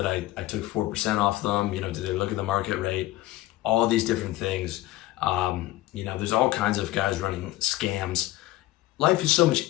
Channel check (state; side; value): quieter; right; 16.4 dB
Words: I took 4% off them? Did they look at the market rate? All these different things. There's all kinds of guys running scams. Life is so much